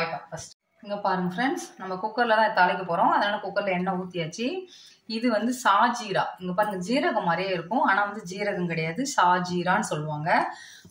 ஃபர்ஸ்ட். இங்கே பாருங்க ஃப்ரெண்ட்ஸ், நம்ம குக்கரில் தான் தாளிக்க போகிறோம். அதனால் குக்கரில் எண்ணெய் ஊற்றியாச்சு. இது வந்து சாஜீரா. இங்கே பாருங்க, ஜீரகம் மாதிரியே இருக்கும், ஆனால் வந்து ஜீரகம் கிடையாது, சாஜீரான்னு சொல்லுவாங்க.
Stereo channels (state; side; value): identical; both; correlation 1.00